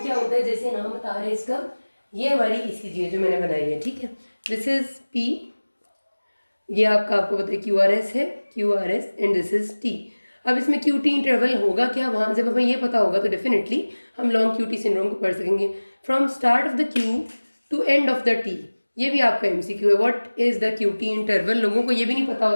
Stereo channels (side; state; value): both; inverted; correlation -1.00